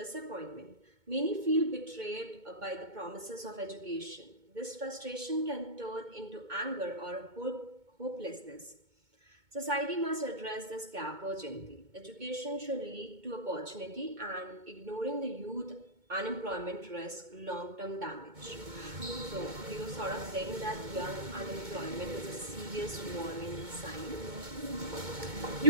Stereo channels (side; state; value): left; late; 2.2 ms